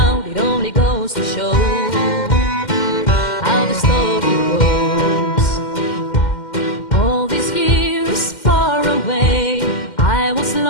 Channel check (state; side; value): late; right; 2.1 ms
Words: It only goes to show